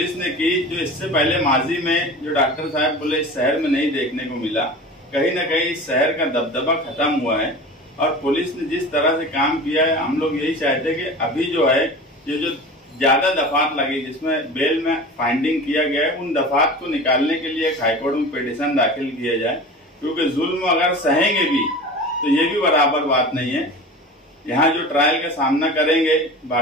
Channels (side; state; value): both; normal; correlation 0.35